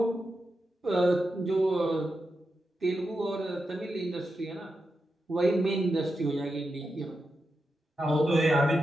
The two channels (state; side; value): normal; both; correlation 0.88